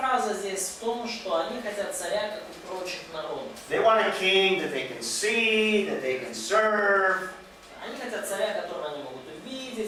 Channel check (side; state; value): both; identical; correlation 1.00